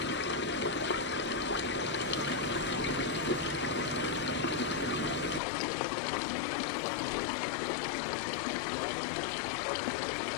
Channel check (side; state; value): right; drops out; at 5.4 s